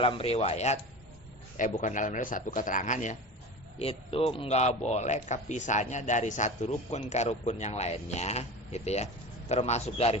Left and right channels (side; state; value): both; normal; correlation 0.31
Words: riwayat, bukan dalam riwayat, satu keterangan ya, itu nggak boleh kepisahnya dari satu rukun ke rukun yang lainnya, gitu ya. Termasuk dari